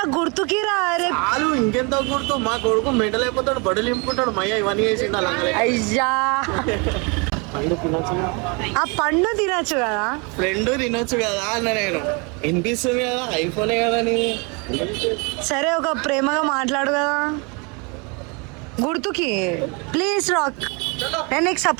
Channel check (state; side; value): quieter; left; 31.1 dB